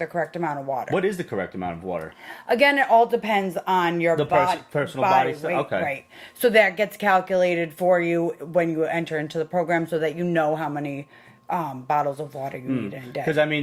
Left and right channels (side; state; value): both; identical; correlation 1.00